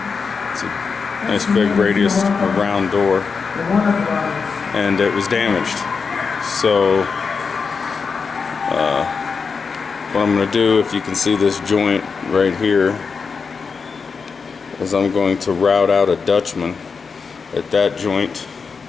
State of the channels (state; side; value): quieter; right; 5.3 dB